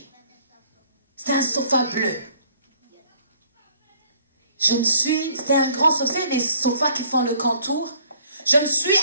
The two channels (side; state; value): both; inverted; correlation -0.59